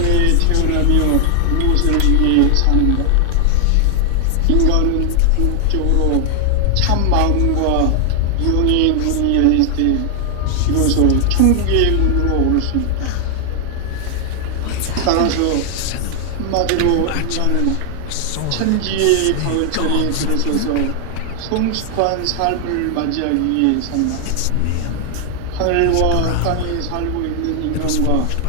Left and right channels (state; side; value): different; both; correlation 0.00